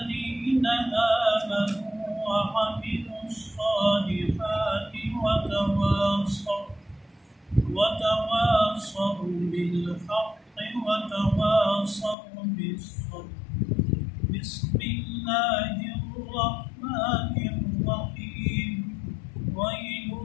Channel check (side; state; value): right; drops out; at 12.2 s